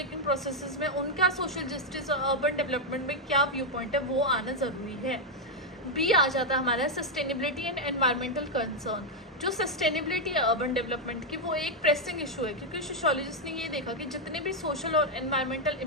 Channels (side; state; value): both; normal; correlation 0.01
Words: processes में उनका सोशल जस्टिस और अर्बन डेवलपमेंट में क्या व्यू पॉइंट है वो आना ज़रूरी है। बी आ जाता है हमारा सस्टेनेबिलिटी एंड एनवायरमेंटल कंसर्न। जो सस्टेनेबिलिटी है अर्बन डेवलपमेंट की वो एक प्रेसिंग इशू है, क्योंकि सोशियोलॉजिस्ट ने ये देखा कि जितने भी सोशल और एनवायरमेंटल